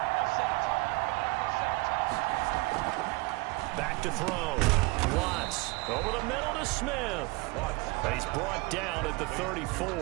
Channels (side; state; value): left; quieter; 24.3 dB